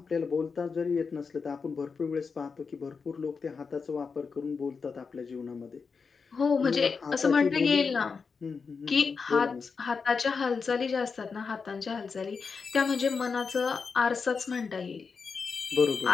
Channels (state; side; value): quieter; right; 5.2 dB